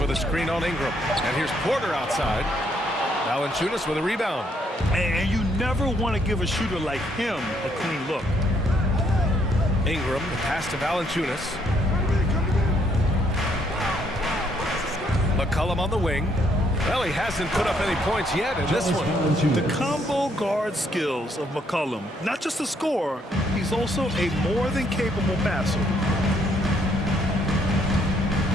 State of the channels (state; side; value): normal; both; correlation 0.70